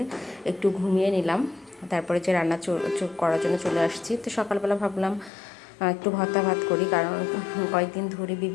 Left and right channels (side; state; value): right; drops out; at 5.3 s